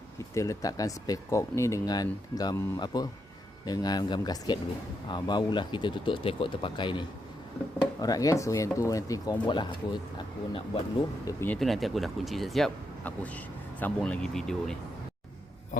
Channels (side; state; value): both; normal; correlation 0.82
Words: Kita letakkan spekok ni dengan gam dengan gam gasket dulu. Barulah kita tutup spekok terpakai ni. Alright guys, so yang tu nanti korang buat lah. Aku nak buat dulu dia punya tu, nanti aku dah kunci siap-siap, aku sambung lagi video ni.